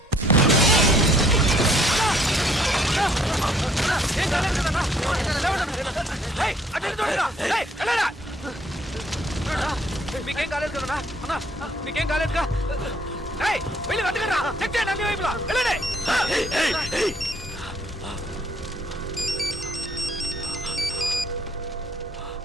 మీకేం కాలేదు కదన్నా? అన్నా మీకేం కాలేదుగా? వెళ్ళి వెతకరా, చెక్ చేయండి అన్ని వైపులా. వెళ్ళండి.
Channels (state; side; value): normal; both; correlation 0.63